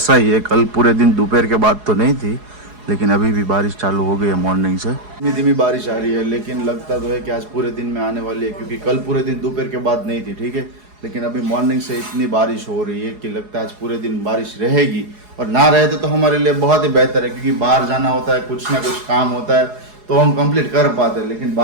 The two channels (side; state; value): left; late; 4.8 ms